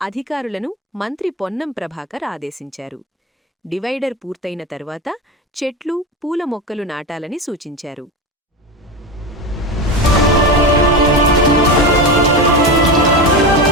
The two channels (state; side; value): normal; both; correlation 0.21